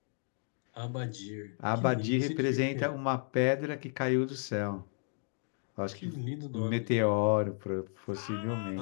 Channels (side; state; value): right; silent; 56 dB below the other